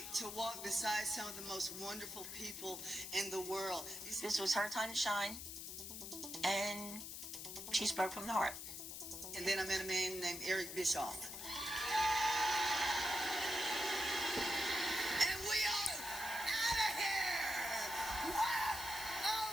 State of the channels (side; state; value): left; noise; hiss, 8 dB below the sound